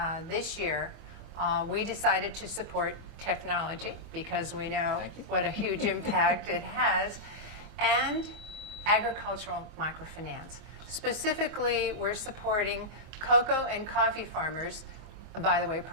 this year, we decided to support technology because we know what a huge impact it has, and agricultural microfinance. Specifically, we're supporting cocoa and coffee farmers, by the way,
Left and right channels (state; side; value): late; left; 24 ms